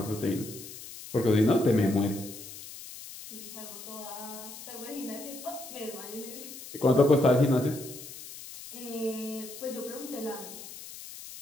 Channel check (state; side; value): noise; left; hiss, 13 dB below the sound